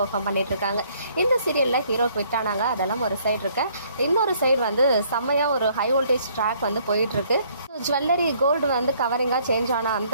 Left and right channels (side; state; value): both; inverted; correlation -0.64